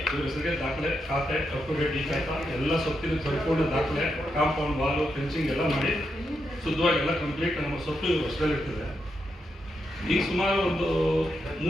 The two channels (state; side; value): normal; both; correlation 0.83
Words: ಇವ್ರ ಹೆಸರಿಗೆ ದಾಖಲೆ, ಖಾತೆ, ಅಪ್ಟುಡೇಟ್ ಈ ಖಾತಾ ಎಲ್ಲ ಸ್ವತ್ತಿನ ಸಂಪೂರ್ಣ ದಾಖಲೆ, ಕಾಂಪೌಂಡ್ ವಾಲು, ಫೆನ್ಸಿಂಗ್ ಎಲ್ಲ ಮಾಡಿ ಶುದ್ಧವಾಗಿ ಎಲ್ಲ ಕಂಪ್ಲೀಟ್ ನಮ್ಮ ಸ್ವತ್ತು ಇವ್ರ ವರ್ಷದಲ್ಲಿರ್ತದೆ. ಈಗ ಸುಮಾರು ಒಂದು